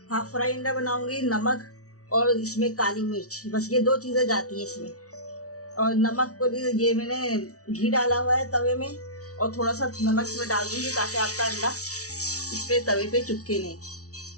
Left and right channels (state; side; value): late; right; 0.66 ms